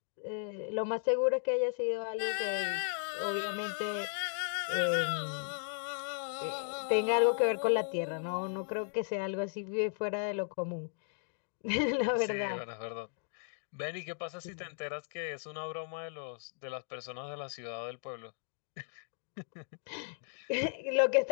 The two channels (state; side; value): silent; right; digital silence